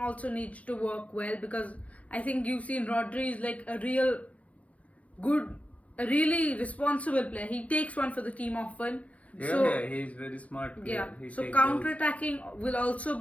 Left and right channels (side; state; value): right; late; 0.066 ms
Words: needs to work well, because I think you've seen Rodri is like a really responsible player. He takes one for the team often. Yeah, he's very smart player. Yeah, so counter-attacking will also